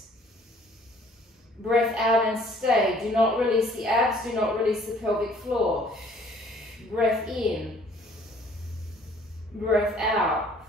Breath out and stay. Do not release the abs. Do not release the pelvic floor. Breath in. Breath out.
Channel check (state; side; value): normal; both; correlation 0.57